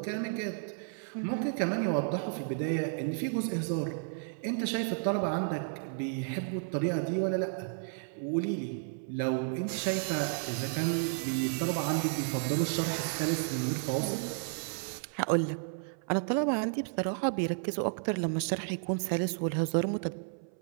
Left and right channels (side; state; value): left; silent; 56 dB below the other